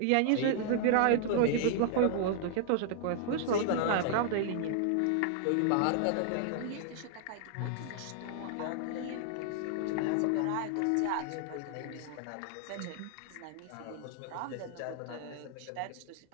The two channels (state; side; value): different; both; correlation -0.01